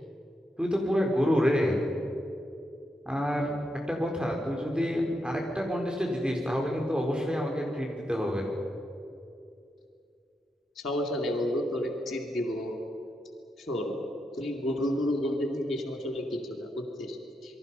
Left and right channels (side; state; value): both; normal; correlation 0.83